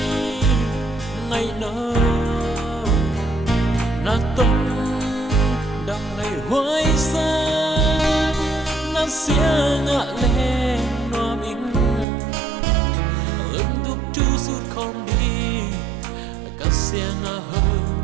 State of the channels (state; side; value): drops out; left; at 12.1 s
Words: ngày nơ na tông đang ngày hoài sa na sia ngạ lên no mình đúc chu sút không đi cả xiang a hơ